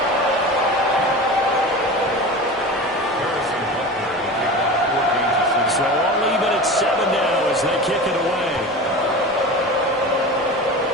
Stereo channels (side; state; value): both; normal; correlation 0.31